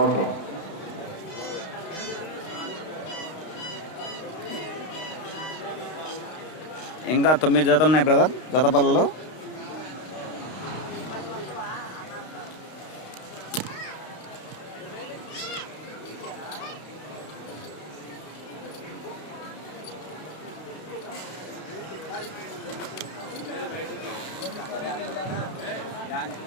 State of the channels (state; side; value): late; right; 32 ms